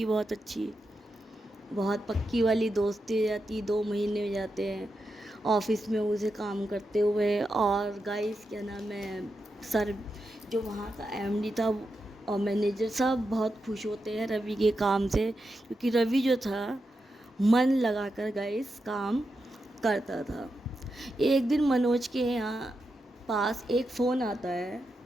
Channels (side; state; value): both; normal; correlation 0.87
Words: बहुत अच्छी, बहुत पक्की वाली दोस्ती हो जाती। 2 महीने हो जाते हैं ऑफिस में उसे काम करते हुए। और गाइस, क्या नाम है, सर जो वहाँ का एमडी था और मैनेजर सब बहुत खुश होते हैं रवि के काम से, क्योंकि रवि जो था मन लगाकर गाइस काम करता था। एक दिन मनोज के यहाँ पास एक फ़ोन आता है